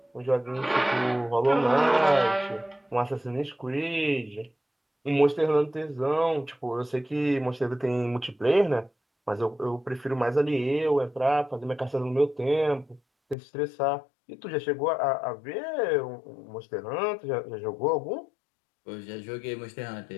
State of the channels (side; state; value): right; drops out; at 13.4 s